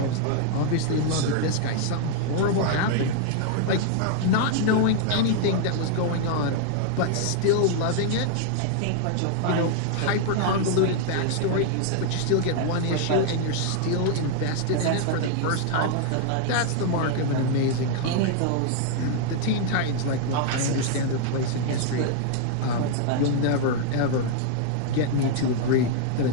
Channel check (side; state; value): both; different; correlation -0.01